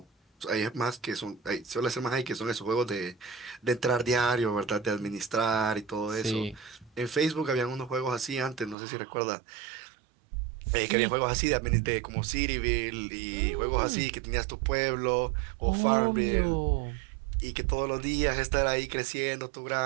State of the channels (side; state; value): left; drops out; at 8.8 s